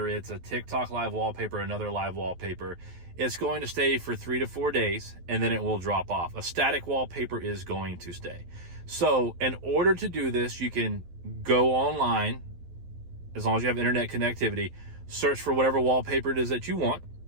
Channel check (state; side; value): late; left; 12 ms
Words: it's a TikTok live wallpaper or another live wallpaper, it's going to stay for 3 to 4 days and then it will drop off. A static wallpaper is going to stay. So in order to do this, you can go online, as long as you have internet connectivity, search for whatever wallpaper it is that you want.